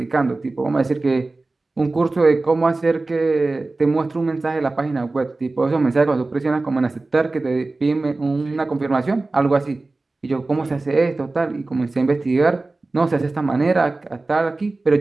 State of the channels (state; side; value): quieter; left; 3.3 dB